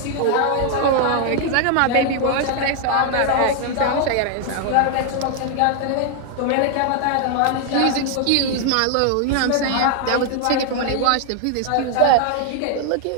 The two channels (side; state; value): both; different; correlation 0.00